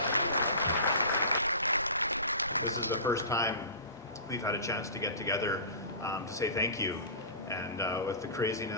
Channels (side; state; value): both; inverted; correlation -0.33